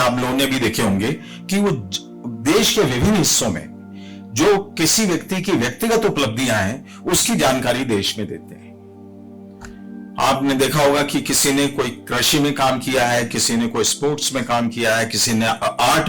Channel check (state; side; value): identical; both; correlation 1.00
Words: लोगों ने भी देखे होंगे, कि वो देश के विभिन्न हिस्सों में जो किसी व्यक्ति की व्यक्तिगत उपलब्धियां हैं, उसकी जानकारी देश में देते हैं। आपने देखा होगा कि किसी ने कोई कृषि में काम किया है, किसी ने कोई स्पोर्ट्स में काम किया है, किसी ने